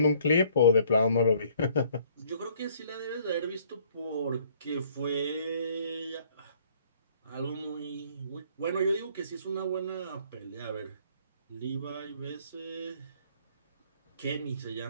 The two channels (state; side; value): inverted; both; correlation -0.60